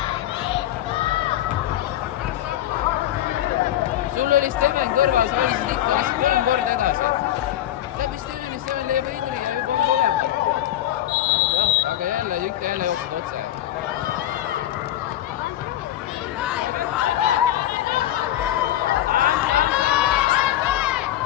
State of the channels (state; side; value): quieter; right; 13.0 dB